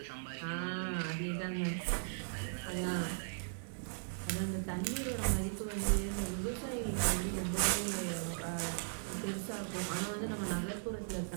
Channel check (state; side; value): silent; left; 52 dB below the other